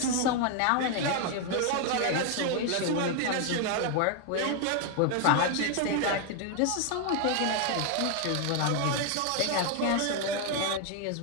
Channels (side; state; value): both; different; correlation 0.01